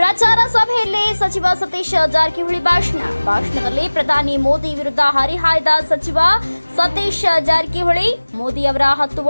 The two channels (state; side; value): inverted; both; correlation -1.00